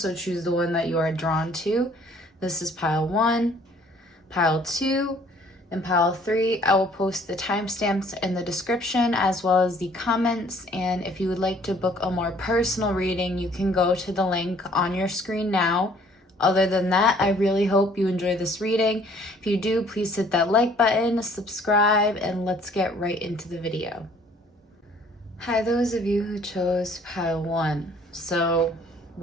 choose the one that you are drawn to. This is pile 1, pile 2, and pile 3. I will post the timestamps in the description as well as the comments, and if you would like to book a more personal reading, you can go to the link on your screen now. Other than that, I really hope you enjoy this reading. If you do, please hit that like button, subscribe, and let's get right into the video. Hi, those of you who chose pile 1. So,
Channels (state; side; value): normal; both; correlation 0.58